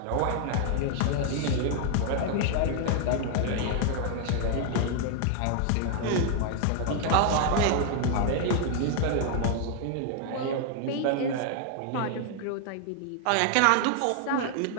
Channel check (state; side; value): different; both; correlation 0.00